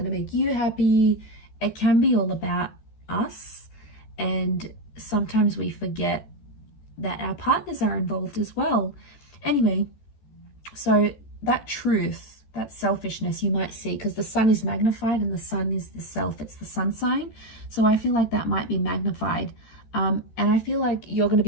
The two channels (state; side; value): late; right; 14 ms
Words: to make you happy. It can be all about us, and sometimes we forget that our partners are involved as well. Anyway, so that truth, that selfishness you might see, because the sun is magnified and the sun is the self, it's the sun sign. So I feel like that might be magnified. And I feel like you're going to